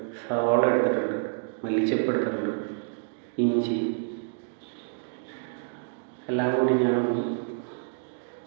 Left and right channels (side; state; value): left; silent; digital silence